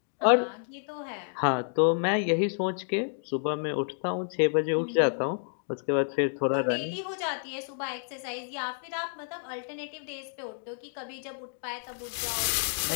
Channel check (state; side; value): silent; right; 58 dB below the other